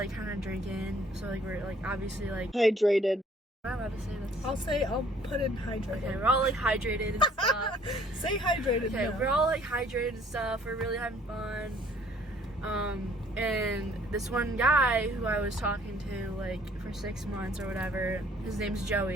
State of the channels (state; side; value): normal; both; correlation 0.58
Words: kind of drinking. So like we're like obviously like. Hydrated. Am I allowed to say this? I'll put in hydrated. Okay, we're all like hydrated and stuff. Say hydrated. Okay, now. we're all like hydrated and stuff. We're really having fun. And this one guy who I was talking to like for 6 months or whatever, his name's